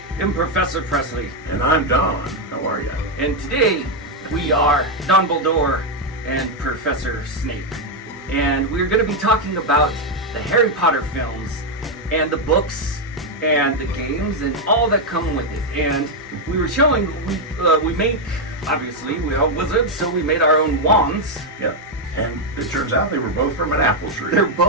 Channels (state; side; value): normal; both; correlation 0.01